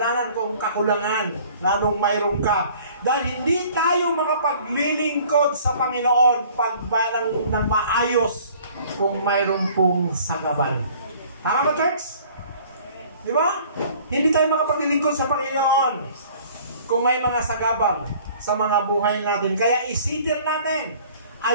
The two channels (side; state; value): both; inverted; correlation -0.52